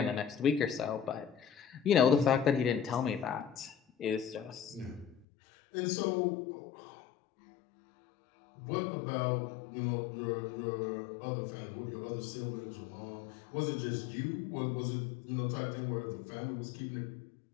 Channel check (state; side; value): drops out; right; at 5.2 s